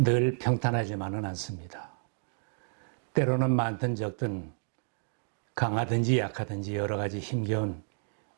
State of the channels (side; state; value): left; silent; digital silence